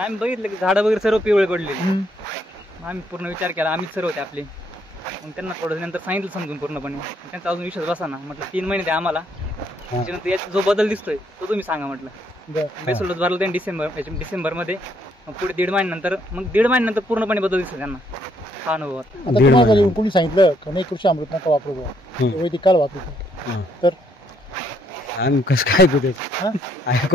बघितलं की झाडं वगैरे सर्व पिवळे पडले. आम्ही पूर्ण विचार केला, आम्हीच सर्व होते आपले. मग त्यांना थोडं नंतर सांगितलं समजून पूर्णपणे. त्यांचा अजून विश्वास बसा ना. म्हटलं 3 महिने द्या आम्हाला, त्याच्यानंतर याचा जो बदल दिसतोय तो तुम्ही सांगा म्हटलं. बेसल डोस भरला त्यांनी डिसेंबरमध्ये. मग पुढे 1.5 महिन्यानंतर मग 1.5 महिन्यानंतर पूर्णपणे बदल दिसतो त्यांना हा अनुभव. कोणी सांगितलं का नाही कृषी अमृत नका वापरू, वैदिक काल वापरू, तर आम्ही कसं काय कुठे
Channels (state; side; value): normal; both; correlation 0.71